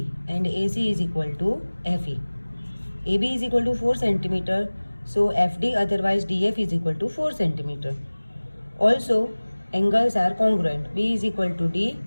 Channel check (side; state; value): both; inverted; correlation -1.00